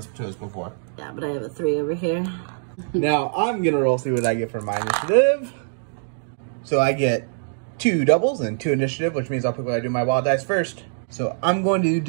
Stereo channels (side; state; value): left; silent; digital silence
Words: to us before. Yeah, but I have a 3 over here. Now, I'm going to roll, see what I get for my initiative. So I get 2 doubles and 2 initiative, which means I'll pick what I do my wild dice first. So I'm going to